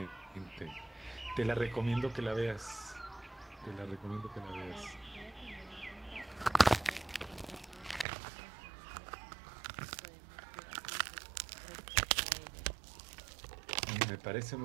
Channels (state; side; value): drops out; left; at 8.1 s